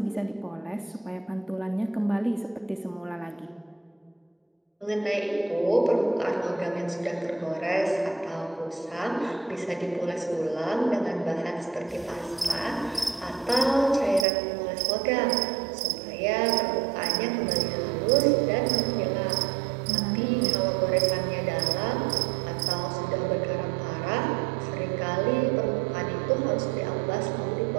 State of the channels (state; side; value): drops out; left; at 14.2 s